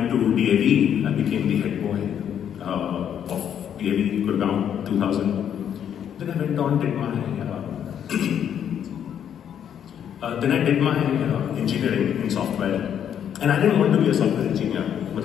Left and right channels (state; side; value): quieter; right; 9.1 dB